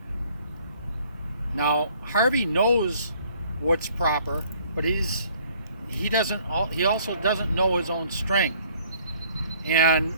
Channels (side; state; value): both; inverted; correlation -0.59